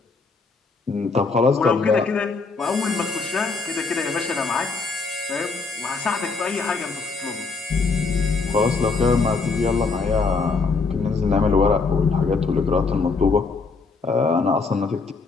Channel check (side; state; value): right; quieter; 4.3 dB